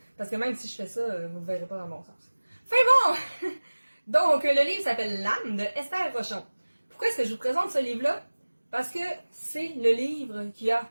Parce que même si je fais ça, vous ne verrez pas dans le bon sens. Fait bon! Donc, le livre s'appelle L'âme de Esther Rochon. Pourquoi est-ce que je vous présente ce livre-là? Parce que c'est le livre qui a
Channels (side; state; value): both; inverted; correlation -1.00